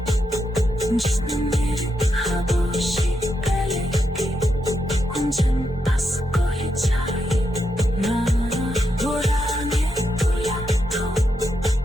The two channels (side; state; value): both; normal; correlation 0.83